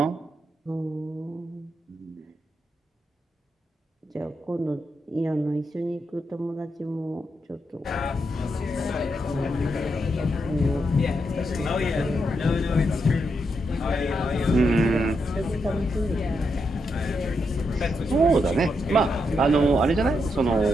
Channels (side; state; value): both; normal; correlation 0.82